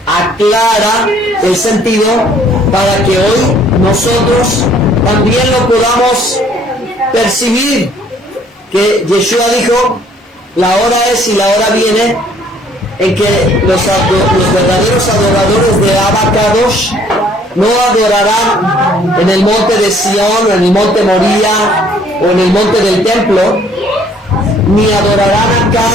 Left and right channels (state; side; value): normal; both; correlation 0.60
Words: aclara el sentido para que hoy nosotros también lo podamos percibir, que Yeshua dijo: la hora es y la hora viene en que los verdaderos adoradores de Abba Kadosh no adorarán en el monte de Sión, o en el monte Moría, o en el monte del templo, ni adorarán acá,